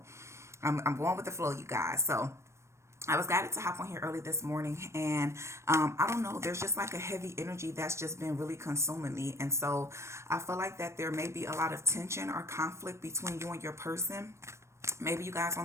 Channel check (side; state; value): left; late; 0.13 ms